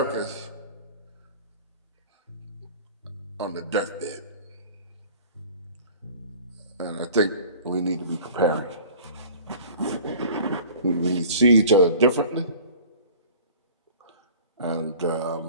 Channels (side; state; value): both; inverted; correlation -0.44